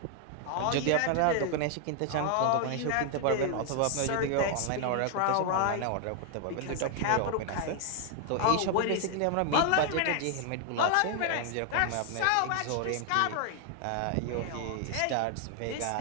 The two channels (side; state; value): both; different; correlation 0.00